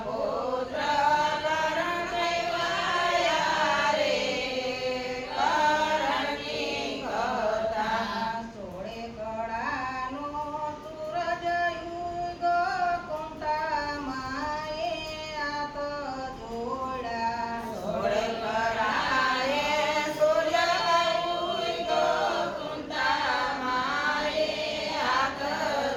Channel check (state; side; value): identical; both; correlation 1.00